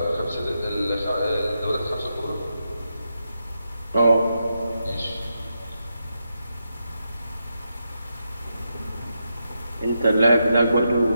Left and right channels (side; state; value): both; inverted; correlation -0.85